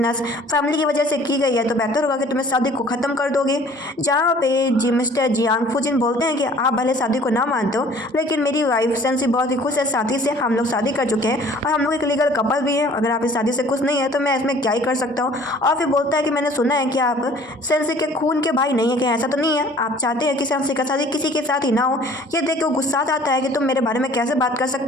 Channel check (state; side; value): normal; both; correlation 0.52